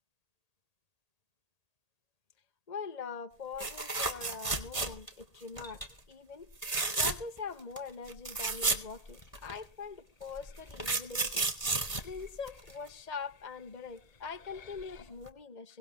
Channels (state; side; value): late; right; 1.8 ms